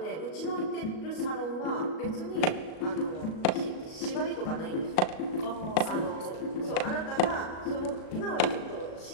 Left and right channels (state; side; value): late; right; 37 ms